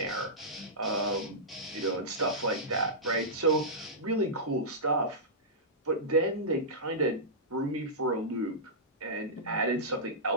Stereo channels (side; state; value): both; normal; correlation -0.15